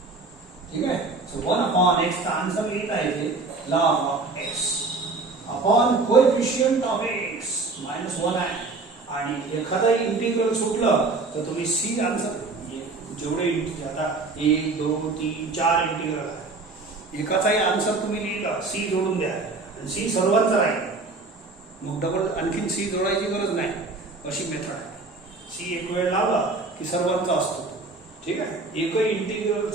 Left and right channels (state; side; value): quieter; left; 3.7 dB